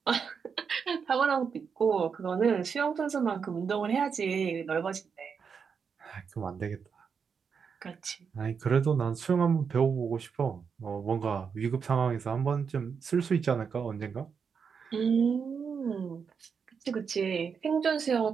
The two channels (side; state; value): left; quieter; 6.2 dB